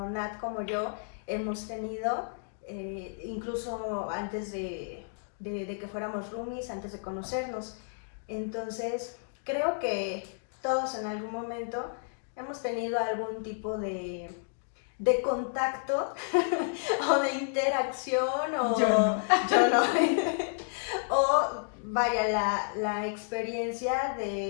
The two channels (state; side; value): silent; right; digital silence